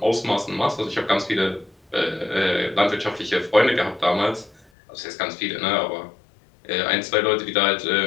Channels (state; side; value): drops out; right; at 4.7 s